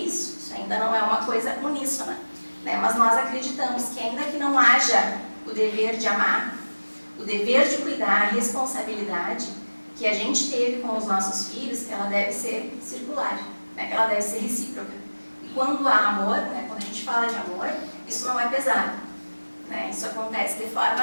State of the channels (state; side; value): inverted; both; correlation -1.00